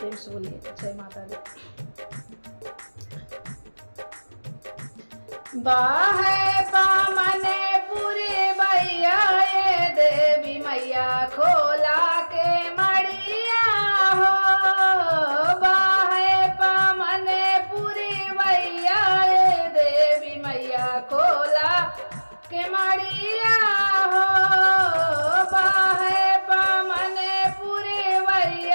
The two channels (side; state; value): both; inverted; correlation -1.00